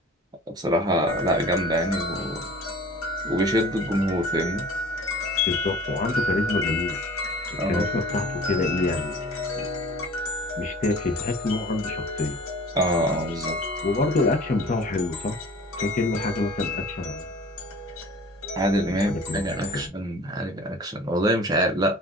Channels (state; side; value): normal; both; correlation 0.45